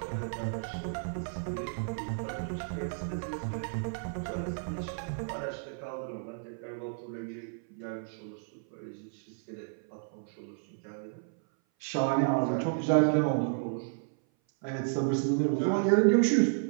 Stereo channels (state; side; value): silent; left; 56 dB below the other